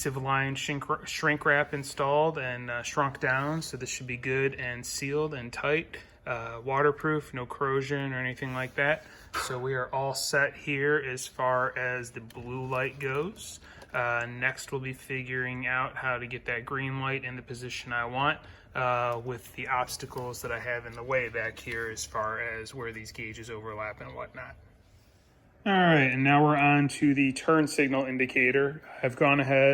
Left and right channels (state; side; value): identical; both; correlation 1.00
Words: line shrink wrap installed and shrunk down, so this should be good and sealed and tight, waterproof, no corrosion or anything like that. So we are all set here as far as the blue light goes. Next we'll be figuring out how to get that green light in the position I want with the obstacles that I have in the way back here as far as where these gauges overlap and whatnot. All right, and now we're on to the turn signal indicator. I've gone